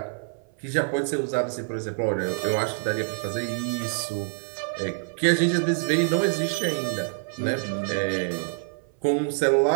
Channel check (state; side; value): silent; left; 56 dB below the other